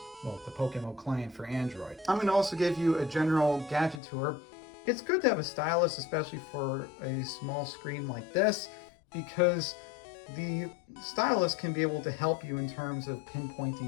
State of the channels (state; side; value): drops out; right; at 4.0 s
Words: Well, the PokeMMO client for Android. I'm going to also give you a general gadget tour. It's good to have a stylus, especially for a small screen like this, because the stylus can be able to help you in terms of